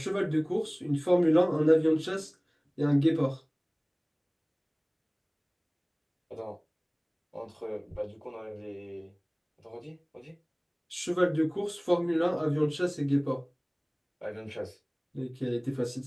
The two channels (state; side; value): identical; both; correlation 1.00